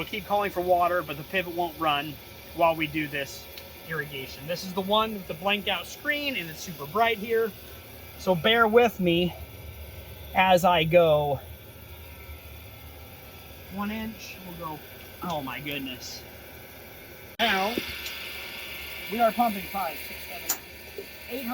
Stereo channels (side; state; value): both; identical; correlation 1.00